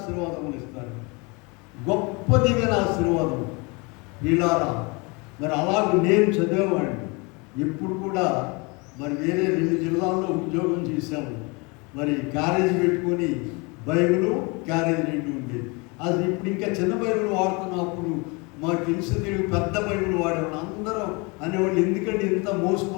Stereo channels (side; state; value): right; quieter; 28.7 dB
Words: ఇస్తారు. గొప్ప దీవెన ఆశీర్వాదం. ఇలారా మరి అలాగే నేను చదివేవాడిని. ఇప్పుడు కూడా మరి వేరే 2 జిల్లాల్లో ఉద్యోగం చేశాము. మరి క్యారేజ్ పెట్టుకొని బైబిల్ క్యారేజ్ 2 ఉండేది. అది ఇప్పుడు ఇంకా చిన్న బైబిల్ వాడుతున్నప్పుడు మాకు తెలిసి పెద్ద బైబిల్ వాడేవాళ్ళు. అందరూ అనేవాళ్ళు, ఎందుకంటే ఇంత